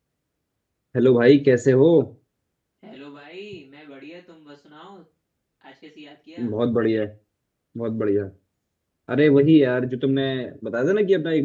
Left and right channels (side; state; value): both; identical; correlation 1.00